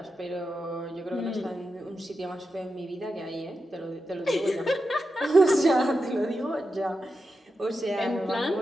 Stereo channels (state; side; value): normal; both; correlation 0.89